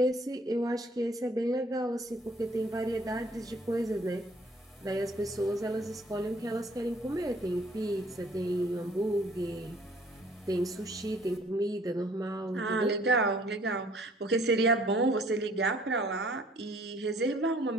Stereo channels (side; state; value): both; normal; correlation 0.58